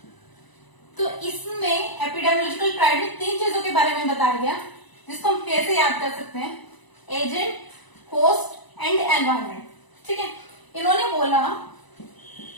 तो इसमें एपिडेमियोलॉजिकल ट्राइड में 3 चीजों के बारे में बताया गया जिसको हम कैसे याद कर सकते हैं, एजेंट, होस्ट एंड एनवायरमेंट, ठीक है। इन्होंने बोला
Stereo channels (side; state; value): right; late; 1.0 ms